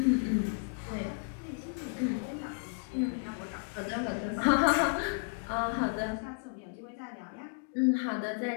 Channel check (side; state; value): right; quieter; 39.7 dB